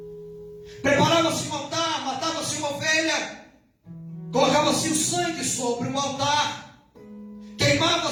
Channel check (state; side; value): identical; both; correlation 1.00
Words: Preparava-se um altar, matava-se uma ovelha, colocava-se o sangue sobre o altar,